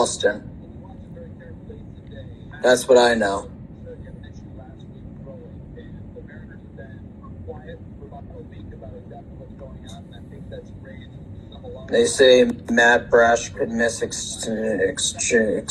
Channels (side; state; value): both; identical; correlation 1.00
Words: That's what I know. They say Matt Brash could miss extensive